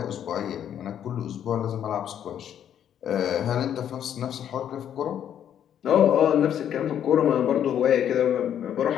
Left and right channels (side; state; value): right; quieter; 9.7 dB